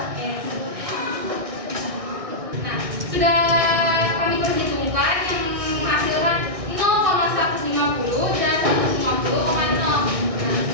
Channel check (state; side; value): late; left; 1.6 ms